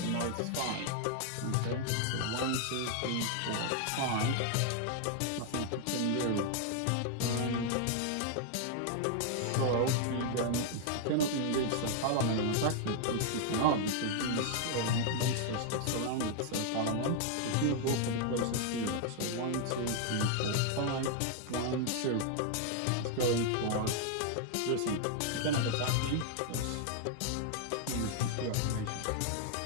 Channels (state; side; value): different; both; correlation 0.00